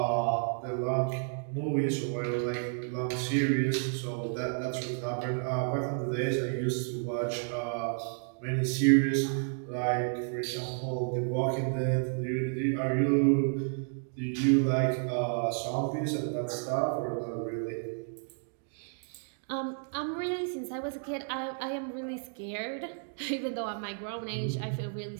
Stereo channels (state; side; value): silent; left; 57 dB below the other